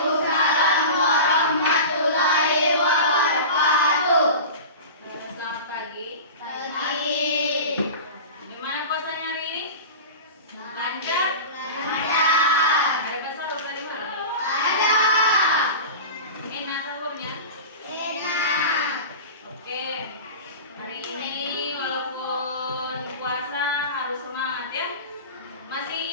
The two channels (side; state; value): both; inverted; correlation -0.31